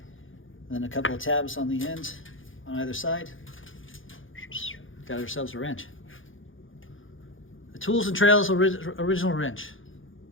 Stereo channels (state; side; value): late; right; 0.58 ms